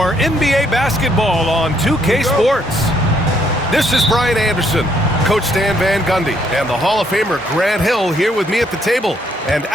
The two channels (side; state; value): both; normal; correlation 0.70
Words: NBA basketball on 2K Sports. This is Brian Anderson, Coach Stan Van Gundy, and the Hall of Famer Grant Hill here with me at the table, and